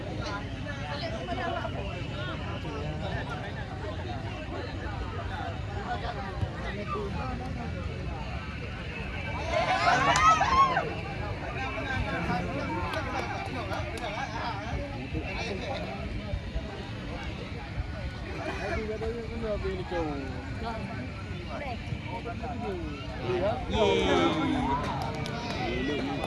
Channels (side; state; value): both; identical; correlation 1.00